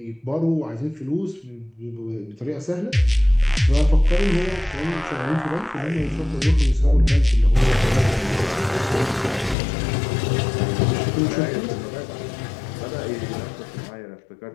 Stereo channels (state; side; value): drops out; right; at 9.6 s